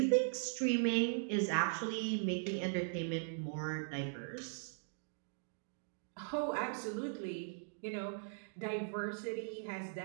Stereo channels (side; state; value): left; silent; digital silence